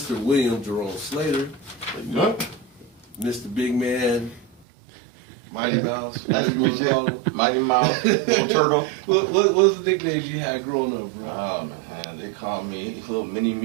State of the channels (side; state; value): left; drops out; at 4.7 s